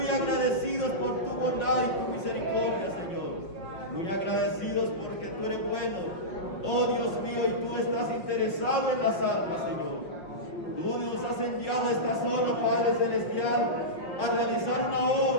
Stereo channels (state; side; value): late; right; 5.5 ms